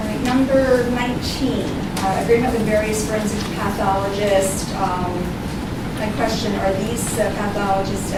right, number 19, agreement with various forensic pathologists. My question, are these pathologists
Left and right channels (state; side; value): identical; both; correlation 1.00